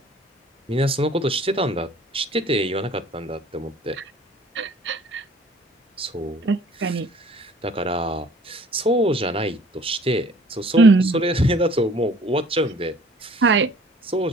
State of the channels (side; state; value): both; normal; correlation 0.53